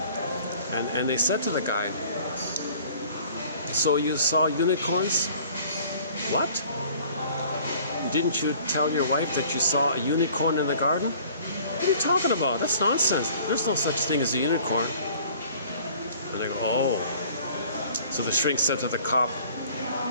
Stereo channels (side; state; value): both; inverted; correlation -0.52